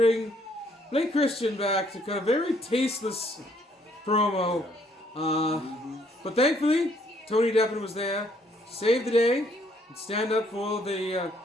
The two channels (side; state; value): both; normal; correlation 0.66